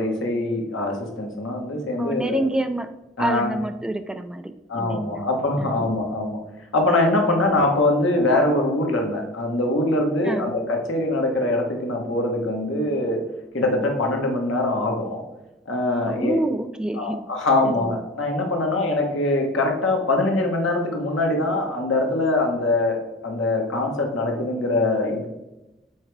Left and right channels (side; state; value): both; normal; correlation 0.30